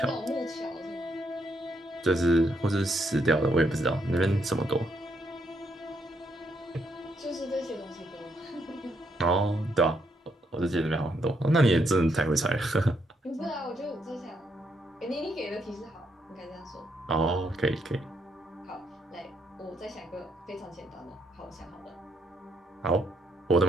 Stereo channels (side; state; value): both; normal; correlation 0.76